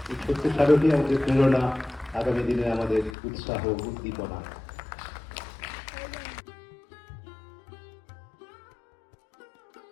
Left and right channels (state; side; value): drops out; right; at 3.1 s